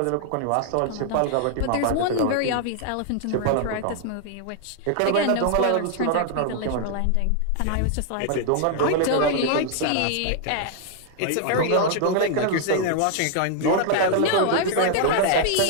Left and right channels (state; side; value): different; both; correlation 0.00